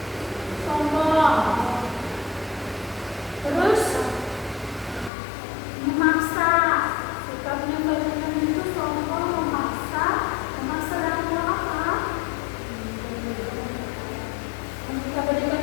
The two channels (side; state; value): right; drops out; at 5.1 s